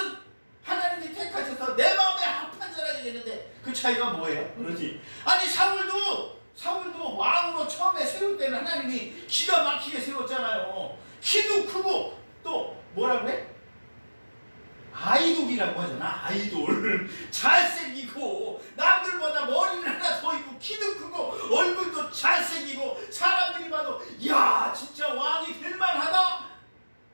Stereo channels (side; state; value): both; inverted; correlation -1.00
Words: 하나님이 택하셔서 내 마음에 합한 자라 얘기했는데 그 차이가 뭐예요? 그러지. 아니 사울도 왕으로 처음에 세울 때는 하나님이 기가 막히게 세웠잖아요. 키도 크고 또 뭐라고 해? 아이돌이라고 하잖아. 아이돌. 잘생기고 남들보다 머리는 하나 더 있고 키도 크고 얼굴도 잘생기고 사람들이 봐도 야 진짜 왕이 될만하다